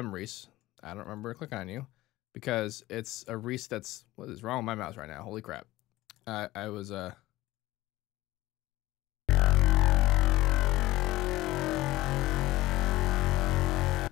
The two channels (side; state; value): right; quieter; 17.3 dB